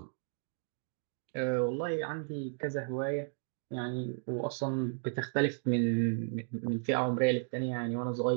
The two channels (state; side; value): silent; left; digital silence